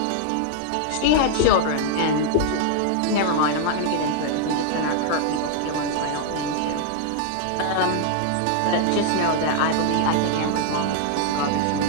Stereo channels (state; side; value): different; both; correlation 0.00